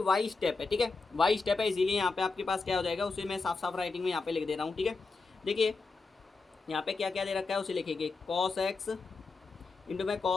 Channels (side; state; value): right; quieter; 4.1 dB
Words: स्टेप है, ठीक है, वाई स्टेप है, इसीलिए यहाँ पे आपके पास क्या हो जाएगा, उसे मैं साफ साफ राइटिंग में यहाँ पे लिख दे रहा हूँ, ठीक है। देखिए यहाँ पे क्या क्या दे रखा है उसे लिखेंगे, कॉस एक्स इंटू में